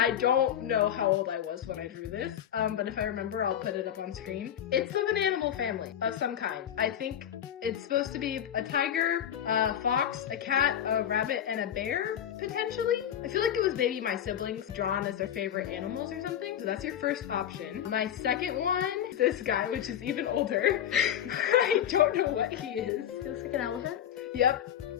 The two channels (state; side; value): quieter; right; 10.0 dB